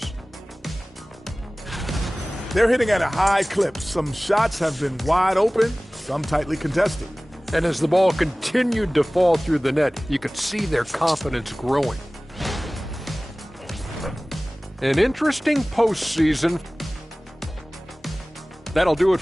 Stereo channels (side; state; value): both; normal; correlation 0.98